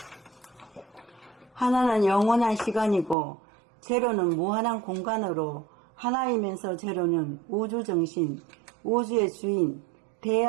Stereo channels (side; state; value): left; drops out; at 3.2 s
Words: 하나는 영원한 시간이고 제로는 무한한 공간으로 하나이면서 제로는 우주정신, 우주의 주인,